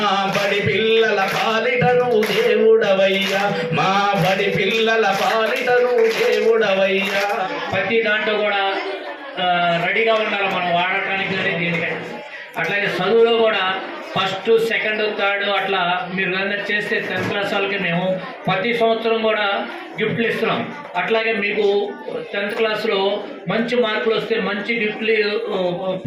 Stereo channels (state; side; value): identical; both; correlation 1.00